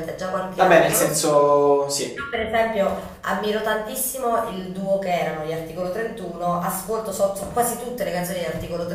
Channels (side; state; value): both; identical; correlation 1.00